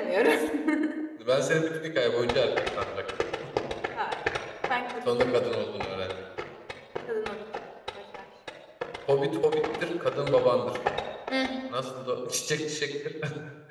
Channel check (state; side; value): identical; both; correlation 1.00